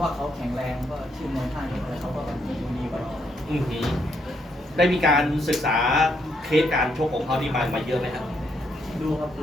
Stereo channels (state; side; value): normal; both; correlation 0.75